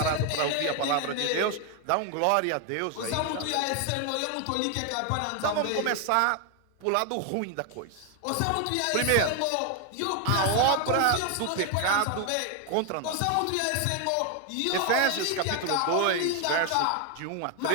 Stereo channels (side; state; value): both; different; correlation 0.01